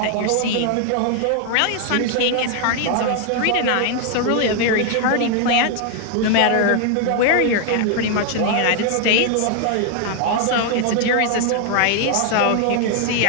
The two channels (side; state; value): both; different; correlation 0.00